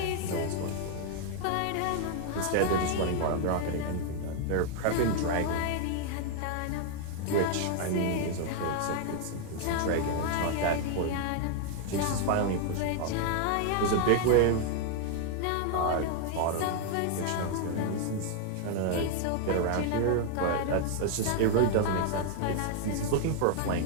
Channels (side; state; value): both; different; correlation 0.00